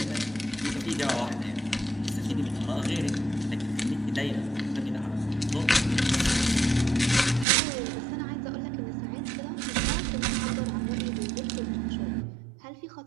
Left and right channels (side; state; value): left; drops out; at 7.5 s